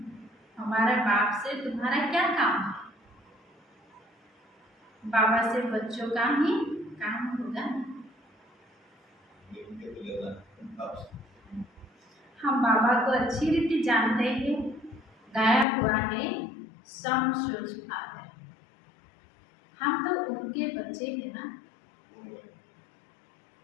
हमारे बाप से तुम्हारा क्या काम है? बाबा से बच्चों का ही काम होगा। हम बाबा को अच्छी रीति जानते हैं। गाया हुआ है सम सूरज फादर, हम तो उनके बच्चे हैं ना।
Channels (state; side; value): drops out; right; at 15.7 s